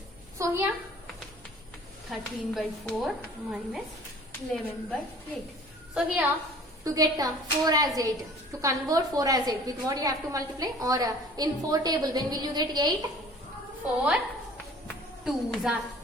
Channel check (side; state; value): both; normal; correlation 0.48